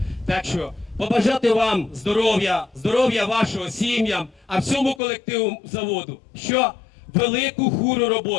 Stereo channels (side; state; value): right; drops out; at 5.0 s